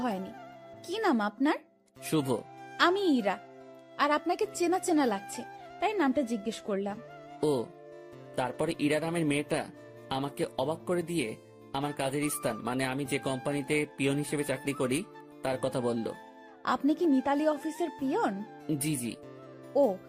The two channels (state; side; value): identical; both; correlation 1.00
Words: হয়নি। কি নাম আপনার? শুভ। আমি ইরা। আর আপনাকে চেনা চেনা লাগছে, তাই নামটা জিজ্ঞেস করলাম। ও, তারপরে ইরা নামের মেয়েটা আমাকে অবাক করে দিয়ে আমার কাজের স্থান, মানে আমি যে কোম্পানিতে পিয়ন হিসেবে চাকরি করি, তার কথা বলল। আপনি কি মিতালি অফিসের পিয়ন? জি জি। ও,